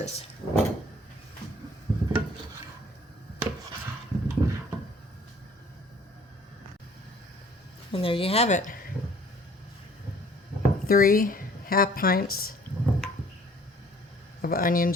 And there you have it. 3 half pints of onion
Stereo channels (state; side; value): normal; both; correlation 0.55